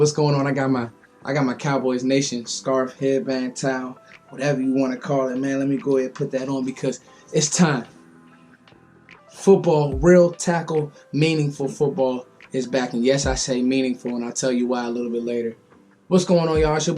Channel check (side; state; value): both; identical; correlation 1.00